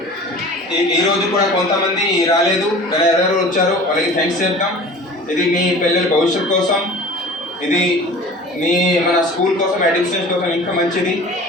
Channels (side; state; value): both; normal; correlation 0.41